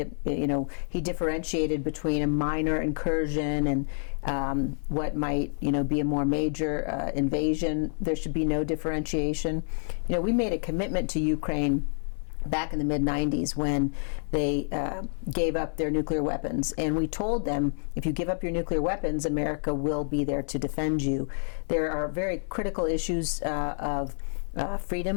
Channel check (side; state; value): right; silent; 59 dB below the other